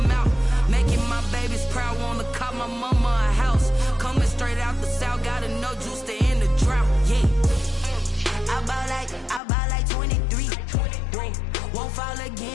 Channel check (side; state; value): right; drops out; at 9.4 s